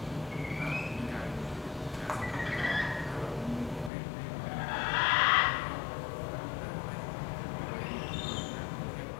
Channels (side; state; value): right; drops out; at 3.9 s